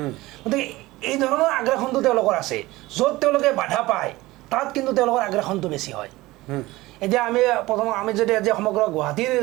গতিকে এই ধৰণৰ আগ্ৰাসনটো তেওঁলোকৰ আছে য'ত তেওঁলোকে বাধা পায় তাত কিন্তু তেওঁলোকৰ আগ্ৰাসনটো বেছি হয় এতিয়া আমি যদি আজি সমগ্ৰ গুৱাহাটীৰ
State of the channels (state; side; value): quieter; left; 19.2 dB